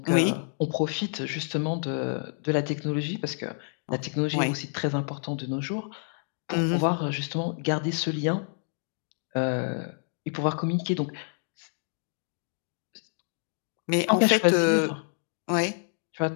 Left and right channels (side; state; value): right; silent; digital silence